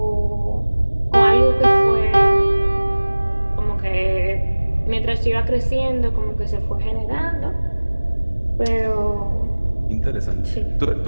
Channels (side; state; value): both; inverted; correlation -1.00